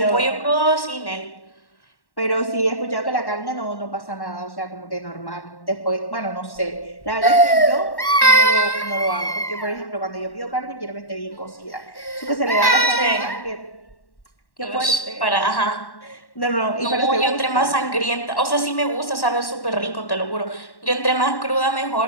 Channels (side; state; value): right; late; 1.1 ms